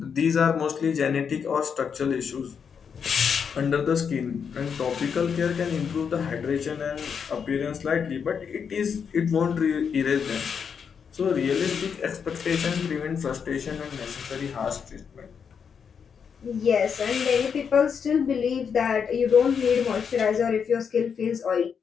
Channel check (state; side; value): quieter; right; 6.7 dB